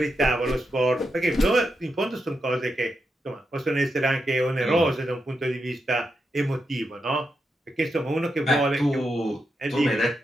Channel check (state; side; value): normal; both; correlation 0.85